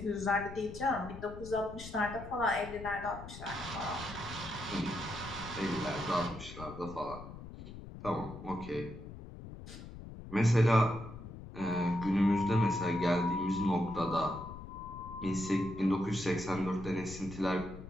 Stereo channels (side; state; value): left; noise; rumble, 13 dB below the sound